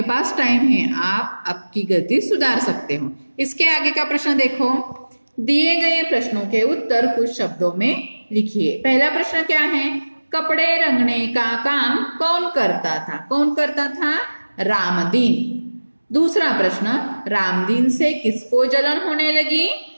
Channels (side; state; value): both; inverted; correlation -1.00